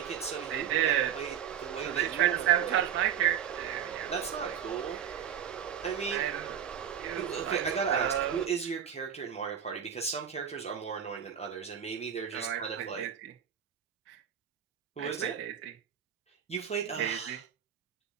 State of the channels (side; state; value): left; quieter; 8.8 dB